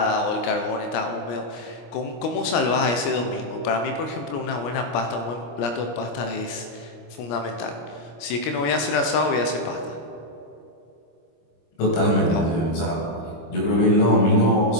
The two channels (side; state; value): right; late; 25 ms